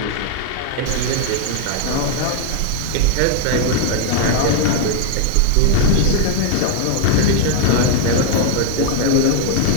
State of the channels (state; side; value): different; both; correlation 0.00